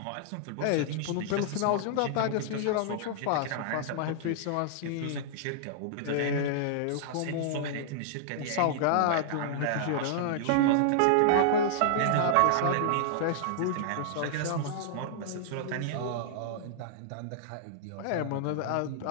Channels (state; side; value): different; both; correlation -0.01